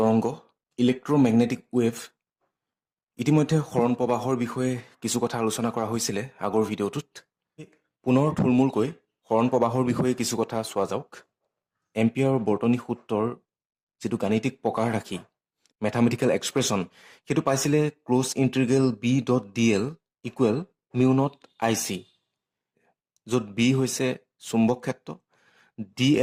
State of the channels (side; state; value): both; identical; correlation 1.00